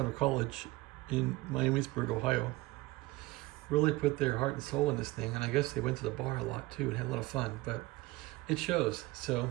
of college in Miamisburg, Ohio, really put their heart and soul in this thing, and I guess they went to the bar a lot too and had a lot of fun, but it shows. So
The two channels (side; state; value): left; quieter; 19.9 dB